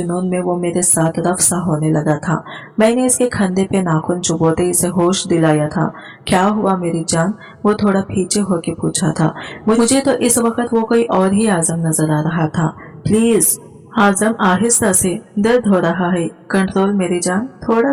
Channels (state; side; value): identical; both; correlation 1.00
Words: में वो मेरे साथ रफ्सा होने लगा था। मैंने इसके कंधे पे नाखून चुभोते इसे होश दिलाया था। क्या हुआ मेरी जान? वो थोड़ा पीछे होके पूछा था। मुझे तो इस वक्त वो कोई और ही आजम नजर आ रहा था। प्लीज आजम, आहिस्ता से, दर्द हो रहा है, कंट्रोल मेरी जान, थोड़ा